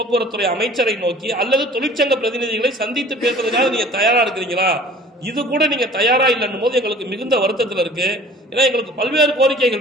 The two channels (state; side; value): normal; both; correlation 0.48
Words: அமைச்சரை நோக்கி அல்லது தொழிற்சங்க பிரதிநிதிகளை சந்தித்து பேசுறதுக்காக நீங்க தயாரா இருக்கிறீங்களா? இது கூட நீங்க தயாரா இல்லைன்னும் போது எங்களுக்கு மிகுந்த வருத்தத்தில் இருக்கு. ஏன்னா எங்களுக்கு பல்வேறு